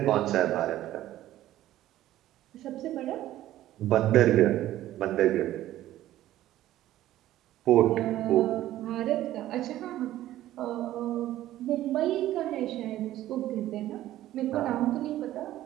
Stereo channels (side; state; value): left; quieter; 14.0 dB